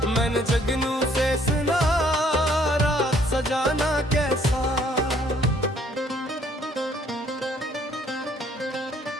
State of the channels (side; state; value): both; normal; correlation 0.63